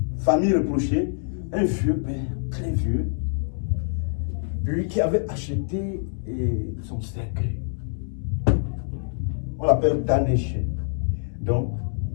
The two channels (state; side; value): silent; right; digital silence